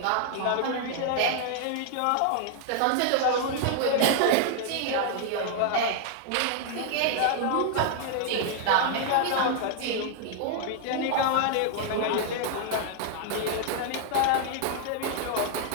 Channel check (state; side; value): different; both; correlation 0.00